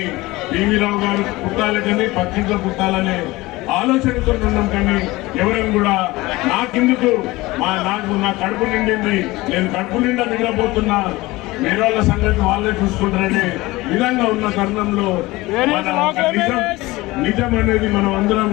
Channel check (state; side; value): quieter; right; 20.2 dB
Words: పివి రావు గారు పుట్టాలి కానీ పక్కింట్లో పుట్టాలనే ఆలోచనతో ఉన్నాం. కానీ ఎవరైనా కూడా నాకెందుకు నా కడుపు నిండింది, నేను కడుపు నిండా నిద్రపోతున్నా, వేరే వాళ్ళ సంగతి వాళ్ళే చూసుకుంటారనే విధంగా ఉన్న తరుణంలో నిజం అనేది మనం అందరం